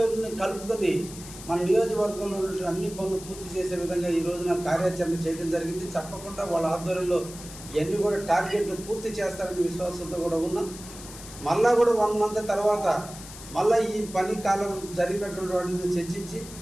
కలుపుకొని మన నియోజకవర్గంలో ఉన్నటువంటి అన్ని పనులు పూర్తి చేసే విధంగా ఈ రోజున కార్యాచరణ చేయడం జరిగింది. తప్పకుండా వాళ్ళ ఆధ్వర్యంలో ఇవన్నీ కూడా టార్గెట్లు పూర్తి చేస్తారనే విశ్వాసంతో కూడా ఉన్నాం. మళ్ళా కూడా 1 మంత్ తర్వాత మళ్ళీ ఈ పని కాలం జరిగినటువంటి వాటిని చర్చించి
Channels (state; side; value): noise; left; hiss, 15 dB below the sound